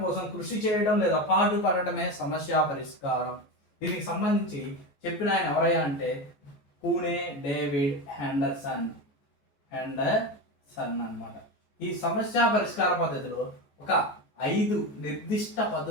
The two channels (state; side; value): late; right; 14 ms